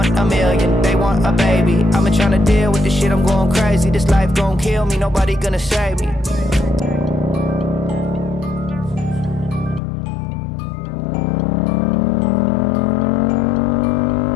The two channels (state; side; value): drops out; right; at 9.8 s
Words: a million, they want a baby. I've been trying to deal with this shit, I'm going crazy. This life gon' kill me, nobody gonna save me.